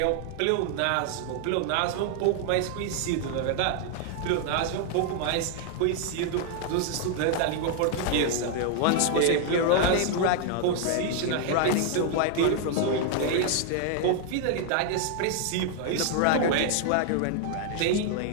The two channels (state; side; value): different; both; correlation 0.00